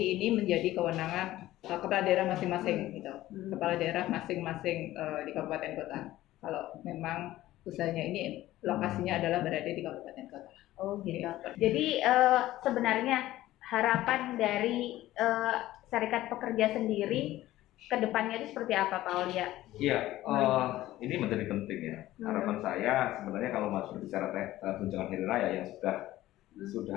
ini menjadi kewenangan kepala daerah masing-masing gitu. Kepala daerah masing-masing di kabupaten kota. Kalau memang usahanya ini lokasinya adalah berada di kabupaten kota. Oh gitu. Jadi sebenarnya harapan dari Serikat Pekerja sendiri kedepannya itu seperti apa Pak Aulia? Iya, ini menjadi penting ya. Harapan saya sebenarnya kalau masuk berbicara tunjangan hari raya yang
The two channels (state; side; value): quieter; right; 15.4 dB